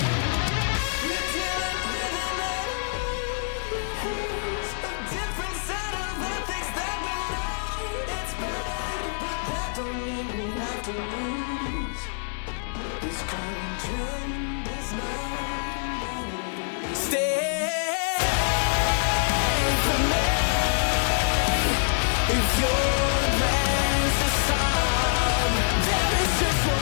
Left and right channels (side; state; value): right; silent; digital silence